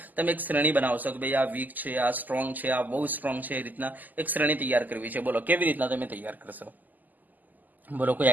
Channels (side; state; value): left; late; 0.083 ms